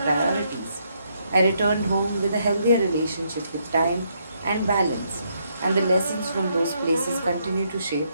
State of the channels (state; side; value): inverted; both; correlation -0.75